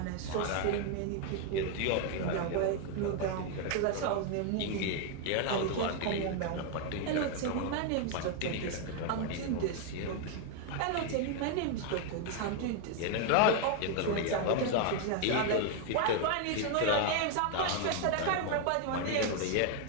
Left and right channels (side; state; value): both; different; correlation 0.01